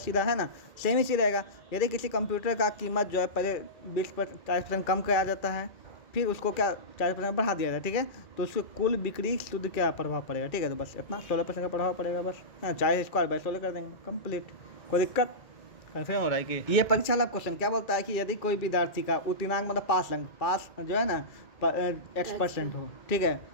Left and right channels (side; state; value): right; late; 2.3 ms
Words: सीधा, है ना। सेम ही चीज़ रहेगा। यदि किसी कंप्यूटर का कीमत जो है पहले 40% कम कराया जाता है, फिर उसको क्या 40% बढ़ा दिया जाता है, ठीक है। तो उसको कुल बिक्री शुद्ध क्या प्रभाव पड़ेगा, ठीक है। तो बस इतना 16% का प्रभाव पड़ेगा, बस, हाँ। 40² बाय 16 कर देंगे, कंप्लीट। कोई दिक्कत? कन्फर्म हो रहा है कि ये परीक्षा वाला क्वेश्चन क्या बोलता है कि यदि कोई विद्यार्थी का उत्तीर्णांक मतलब पास जो है ना x% हो, ठीक है,